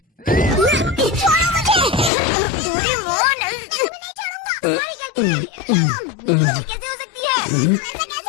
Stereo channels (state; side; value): drops out; right; at 2.1 s